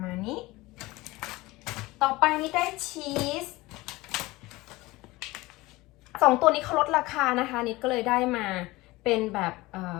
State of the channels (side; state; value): right; quieter; 20.5 dB